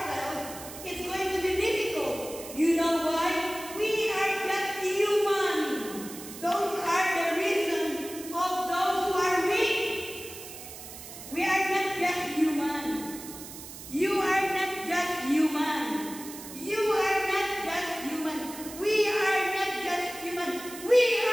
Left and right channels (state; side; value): noise; right; hiss, 13 dB below the sound